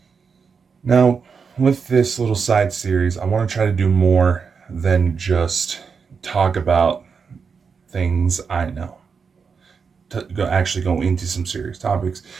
Now, with this little side series, I want to try to do more than just talk about things I know. Actually go into some serious topics,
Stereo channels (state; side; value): quieter; left; 5.7 dB